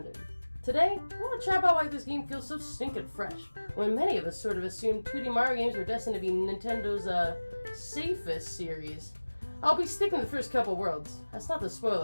Today, I want to chat about why this game feels so stinking fresh, when many of us sort of assumed 2D Mario games were destined to be Nintendo's, safest series. I'll be sticking to the first couple worlds. That's not to spoil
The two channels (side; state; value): both; inverted; correlation -1.00